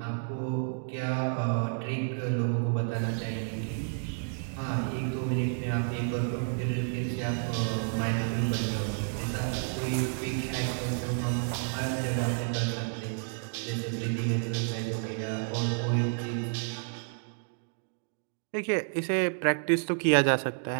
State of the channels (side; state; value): left; silent; 57 dB below the other